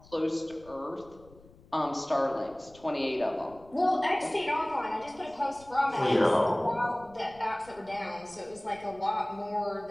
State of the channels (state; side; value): noise; left; rumble, 24 dB below the sound